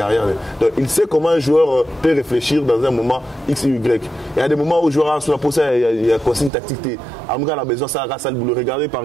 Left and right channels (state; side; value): drops out; left; at 6.5 s